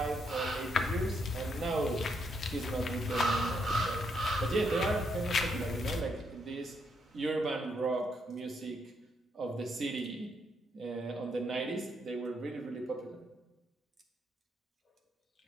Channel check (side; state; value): both; normal; correlation 0.76